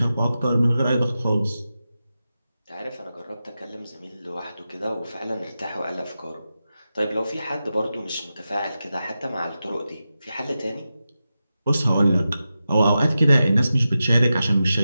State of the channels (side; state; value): both; inverted; correlation -0.91